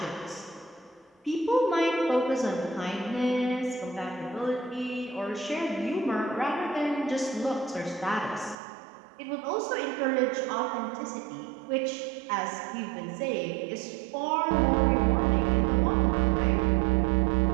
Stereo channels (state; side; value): drops out; left; at 8.6 s